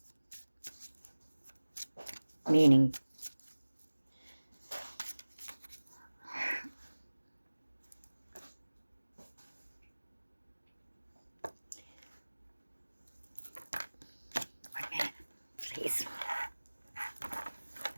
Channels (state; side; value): inverted; both; correlation -1.00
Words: meaning. One minute, please.